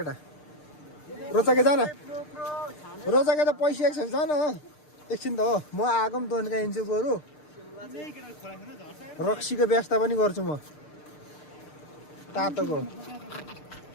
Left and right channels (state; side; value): late; right; 6.6 ms